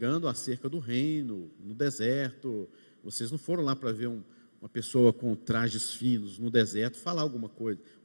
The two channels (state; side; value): inverted; both; correlation -1.00